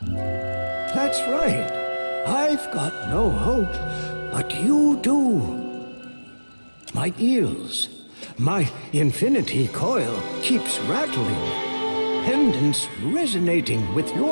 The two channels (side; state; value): both; inverted; correlation -1.00